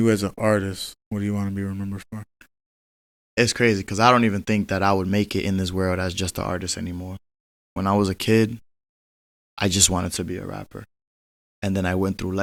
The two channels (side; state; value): both; identical; correlation 1.00